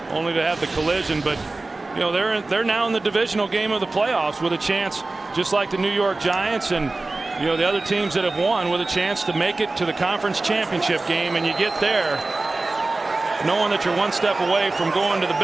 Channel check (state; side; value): quieter; left; 3.2 dB